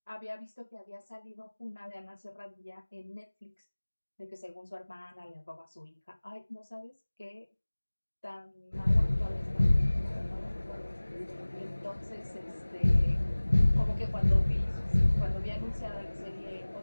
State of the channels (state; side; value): inverted; both; correlation -1.00